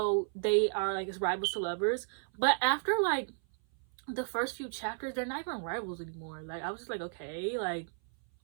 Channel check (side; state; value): left; silent; 55 dB below the other